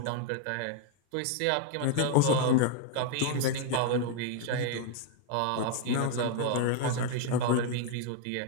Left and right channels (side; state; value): both; different; correlation 0.00